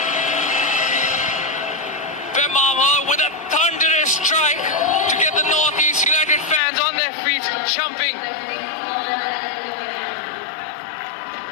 Bemama with a thunderous strike to get the Northeast United fans on their feet, jumping.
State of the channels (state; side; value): drops out; right; at 6.6 s